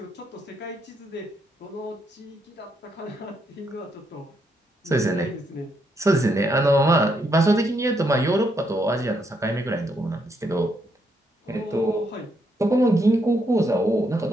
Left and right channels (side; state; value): both; normal; correlation 0.77